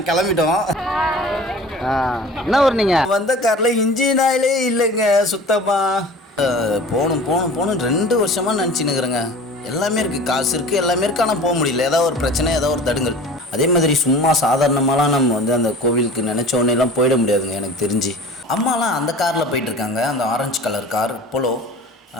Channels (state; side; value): normal; both; correlation 0.41